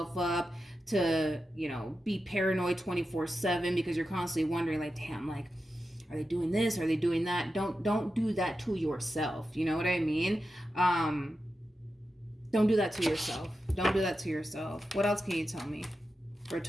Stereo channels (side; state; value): both; normal; correlation 0.90